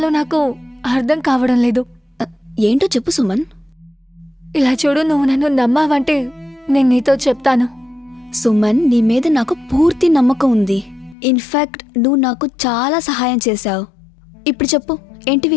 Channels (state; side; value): drops out; right; at 11.2 s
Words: నాకు అర్థం కావడం లేదు. ఏంటో చెప్పు సుమన్. ఇలా చూడు, నువ్వు నన్ను నమ్మావంటే నేను నీతో చెప్తాను. సుమన్, నీ మీద నాకు పూర్తి నమ్మకం ఉంది. ఇన్ఫాక్ట్ నువ్వు నాకు చాలా సహాయం చేశావు. ఇప్పుడు చెప్పు, ఏంటి